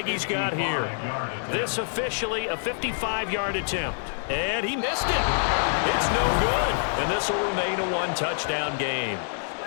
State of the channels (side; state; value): right; silent; digital silence